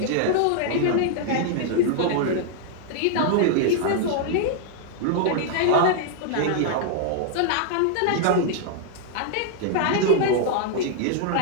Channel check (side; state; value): both; different; correlation -0.01